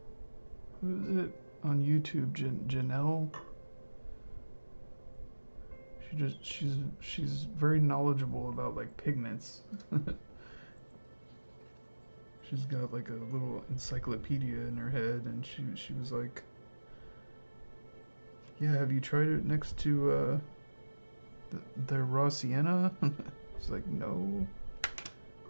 who is it on YouTube? Janelle. She's very knowledgeable about like pigments. She's got like a little encyclopedia in her head, and she was like, "Yeah, have you tried it next to the raw sienna?" It's like, "No."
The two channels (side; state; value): both; inverted; correlation -1.00